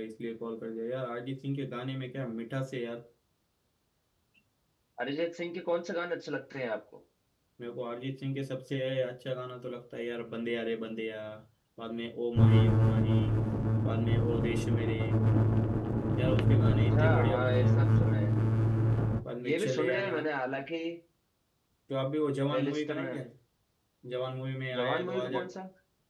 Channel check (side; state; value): both; identical; correlation 1.00